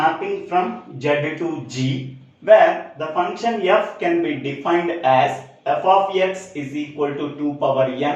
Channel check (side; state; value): both; identical; correlation 1.00